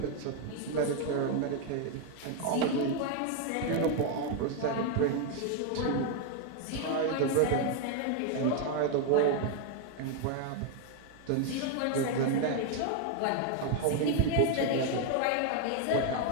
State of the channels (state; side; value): different; both; correlation 0.01